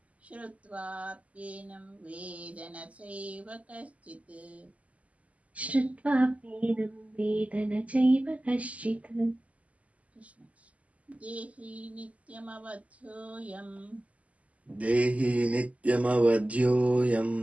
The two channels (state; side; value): late; left; 0.069 ms